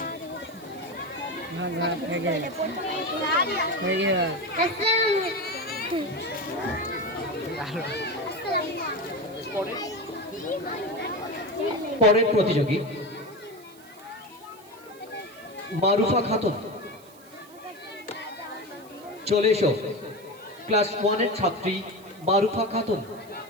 পরের প্রতিযোগী মারুফা খাতুন, চলে এসো। ক্লাস 1 এর ছাত্রী মারুফা খাতুন।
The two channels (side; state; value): right; noise; hiss, 24 dB below the sound